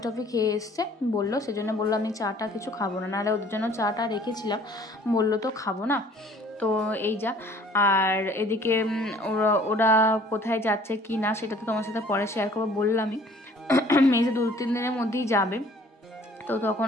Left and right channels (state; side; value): normal; both; correlation 0.54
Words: টফি খেয়ে এসছে বললো, সেজন্য বললো আমি চাটা কিছু খাবো না, নাহলে ওদের জন্য চাটা রেখেছিলাম, বললো তো খাবো না। তো এই যা। আর এদিকে ওরা কোথায় যাচ্ছে কি না সেটা তো তোমার সাথে পরে শেয়ার করবো, বললামই মেজে 2-3 দিনের মধ্যেই যাবে, তো তখন